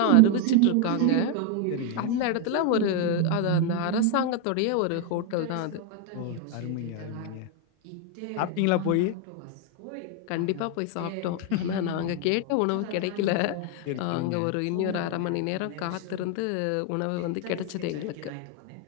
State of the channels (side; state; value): both; different; correlation 0.01